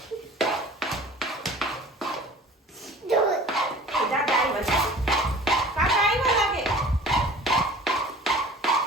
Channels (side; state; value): both; normal; correlation 0.45